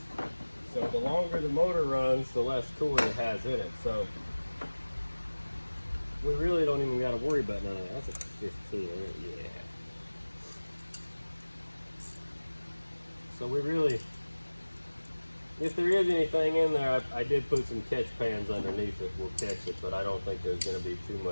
So the longer the motor runs, the less coolant it has in it. So we really don't even got to worry about none of that. That's a 15, yeah. So we really, if there is anything in there, I did put some catch pans underneath it. We'll catch it, but I don't think there's going to be too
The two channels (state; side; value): inverted; both; correlation -1.00